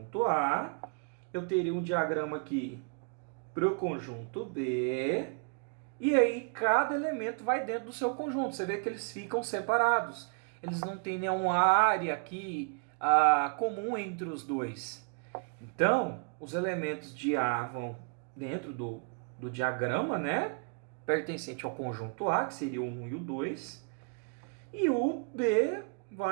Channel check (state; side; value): quieter; left; 38.0 dB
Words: A, eu teria um diagrama aqui para o conjunto B, e aí cada elemento vai dentro do seu conjunto. Você vê que eles ficam separados. Eles não têm nenhuma área aqui comum entre os dois. Então, os elementos de A vão dentro do diagrama, né? Pertencente ao conjunto A, que seria o 1 e o 2. E o B